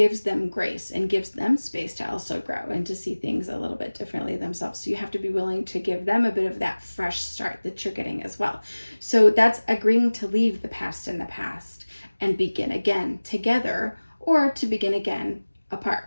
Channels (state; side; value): inverted; both; correlation -1.00